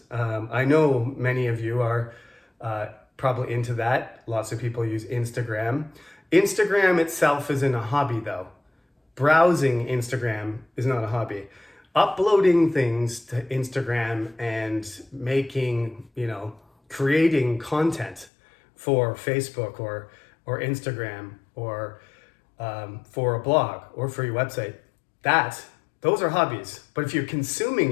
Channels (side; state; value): right; drops out; at 18.2 s